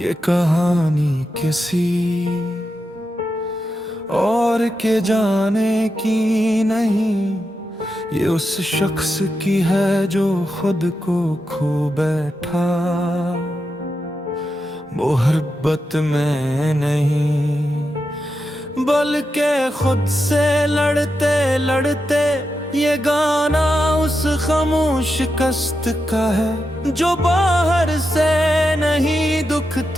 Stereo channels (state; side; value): normal; both; correlation 0.87